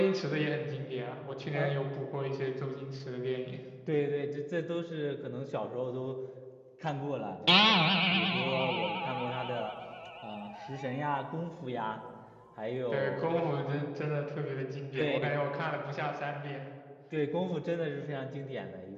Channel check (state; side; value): identical; both; correlation 1.00